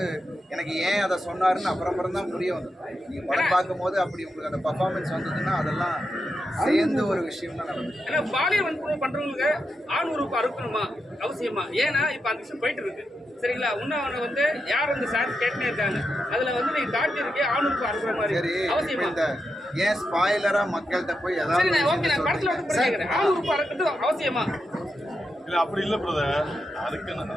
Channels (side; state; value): both; normal; correlation 0.86